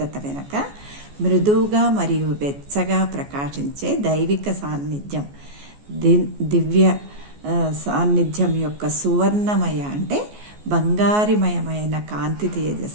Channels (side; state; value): left; late; 14 ms